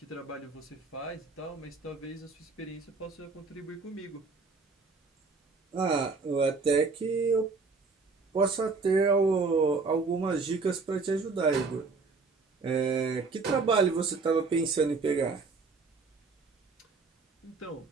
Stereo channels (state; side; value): quieter; left; 4.3 dB